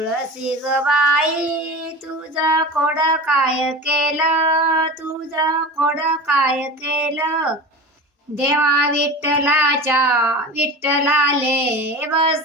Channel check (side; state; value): both; normal; correlation 0.31